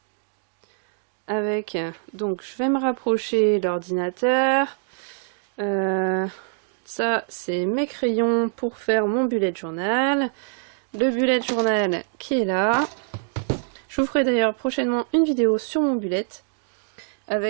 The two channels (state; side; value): silent; left; digital silence